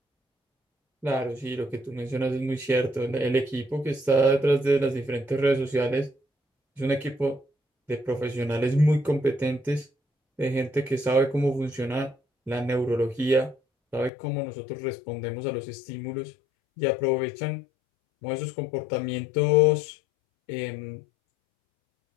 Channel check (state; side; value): drops out; right; at 14.1 s